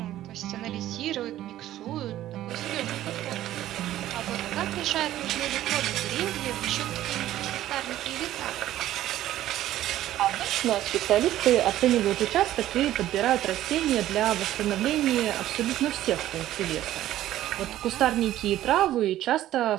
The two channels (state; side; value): quieter; left; 13.6 dB